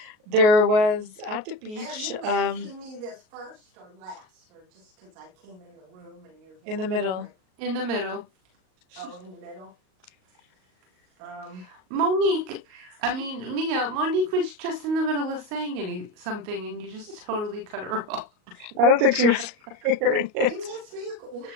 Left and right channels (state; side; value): late; left; 38 ms